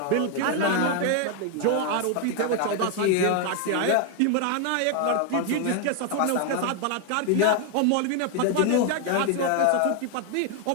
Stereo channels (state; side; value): different; both; correlation 0.00